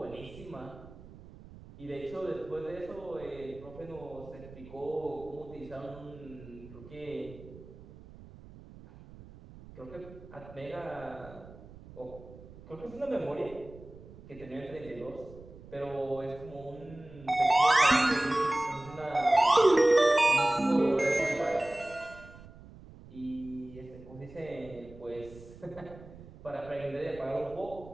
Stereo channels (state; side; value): noise; right; rumble, 18 dB below the sound